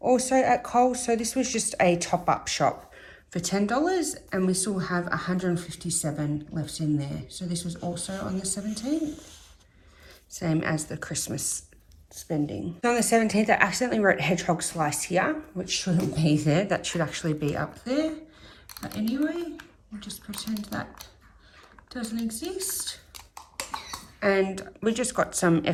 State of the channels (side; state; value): both; identical; correlation 1.00